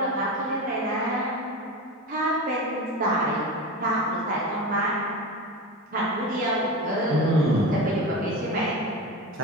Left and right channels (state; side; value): normal; both; correlation 0.25